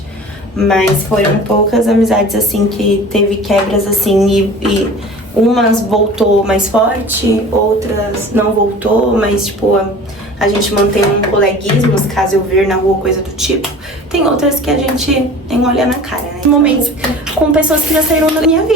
Mas foram poucas amizades, assim, que teve quebras, assim, e umas voltou mais forte, outras não voltou, mas, tipo, a gente mantém um coleguismo, caso eu ver na rua, coisa do tipo. Tem outras que a gente nem olha na cara, né? Momentos com pessoas que já saíram da minha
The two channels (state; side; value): normal; both; correlation 0.41